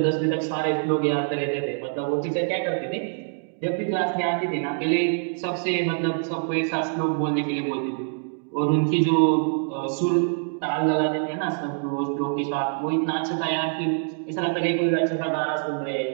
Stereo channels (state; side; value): silent; left; digital silence